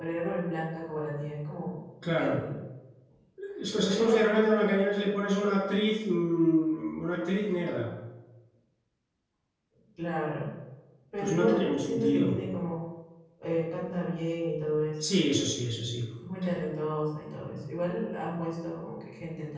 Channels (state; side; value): identical; both; correlation 1.00